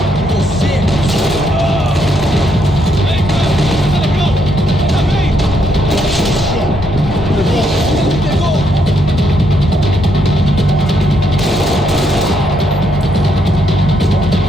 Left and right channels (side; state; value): both; normal; correlation 0.75